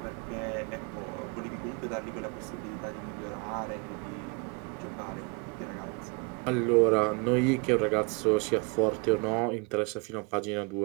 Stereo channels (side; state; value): left; quieter; 30.3 dB